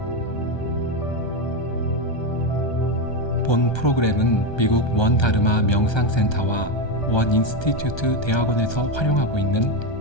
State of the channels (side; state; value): right; late; 1.3 ms